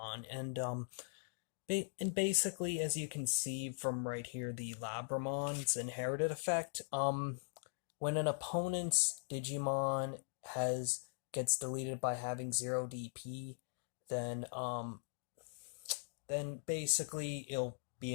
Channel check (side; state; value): right; silent; digital silence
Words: and basically, as you can see from right here, the Labramon's inherited effect. When an opponent's Digimon has gets deleted by having 0 DP, then basically it'll